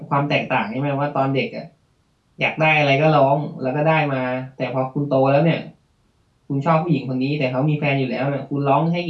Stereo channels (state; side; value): identical; both; correlation 1.00